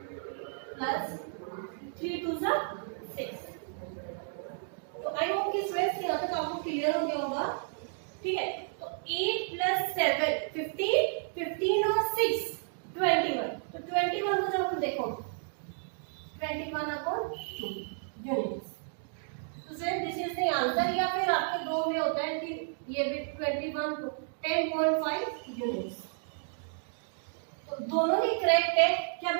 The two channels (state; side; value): silent; left; digital silence